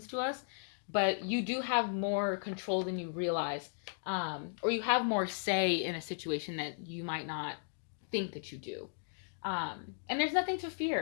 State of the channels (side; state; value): right; silent; digital silence